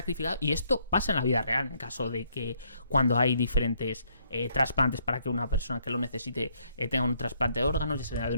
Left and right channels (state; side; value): inverted; both; correlation -0.70